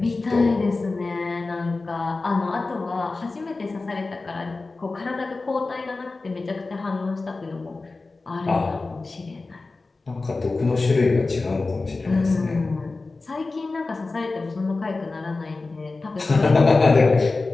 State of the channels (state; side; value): quieter; right; 3.6 dB